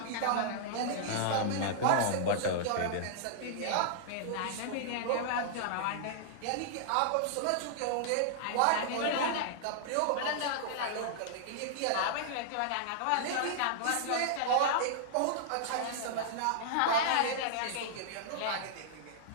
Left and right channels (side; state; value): both; different; correlation -0.01